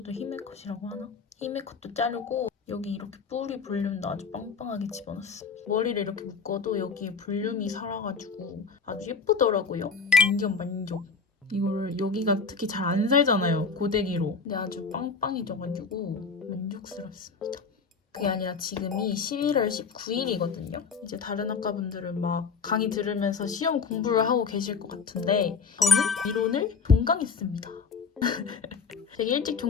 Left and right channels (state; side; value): quieter; right; 5.2 dB